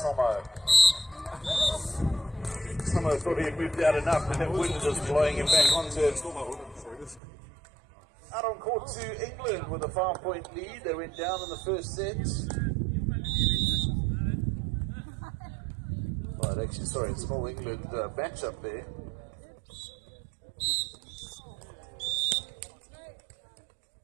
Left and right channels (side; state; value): left; drops out; at 7.2 s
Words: Tomo. Tomo thought he had moved out enough, and that wind just blowing him back onto it. Out on court to England with a 5-point lead. They went down in the first set. Well, actually, sorry, it's an all England matchup there.